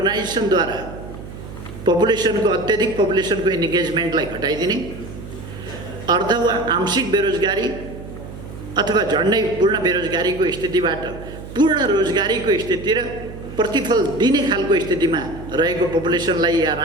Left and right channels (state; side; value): noise; right; hum, 13 dB below the sound